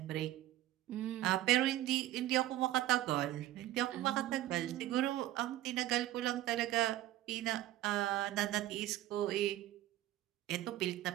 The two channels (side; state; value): left; quieter; 14.6 dB